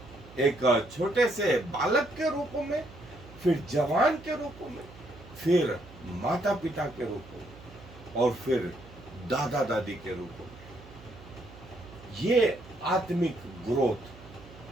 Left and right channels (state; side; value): noise; right; hum, 19 dB below the sound